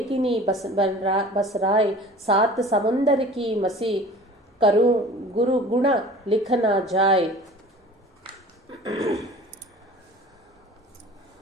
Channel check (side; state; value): both; normal; correlation 0.43